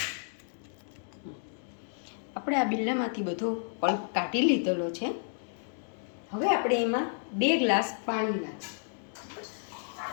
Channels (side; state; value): right; silent; digital silence